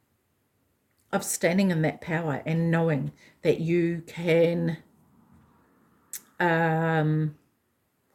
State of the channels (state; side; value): identical; both; correlation 1.00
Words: of standing in that power and knowing that you can, what